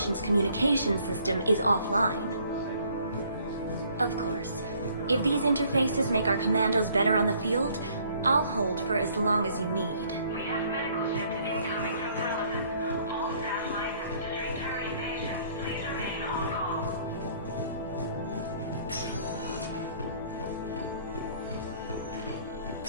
communication system is offline. Of course, if these interfaces make our commandos better on the field, I'll hold for as long as you need. We have medical ships incoming from Paladin. All staff licensed to treat Turian patients, please remain on call.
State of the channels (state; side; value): inverted; both; correlation -0.60